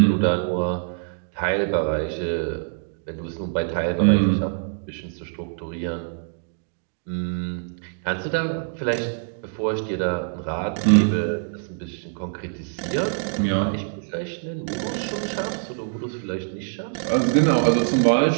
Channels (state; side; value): silent; left; digital silence